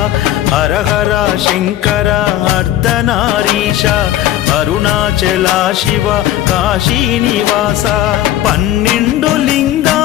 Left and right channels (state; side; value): quieter; right; 13.1 dB